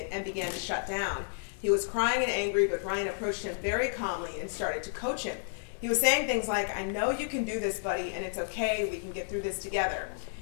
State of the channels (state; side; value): silent; right; digital silence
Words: and began to shut down. He was crying and angry, but Ryan approached him very calmly and started to coach him. He was saying things like, "I know you can do this, buddy, and it's okay, we can get through this together."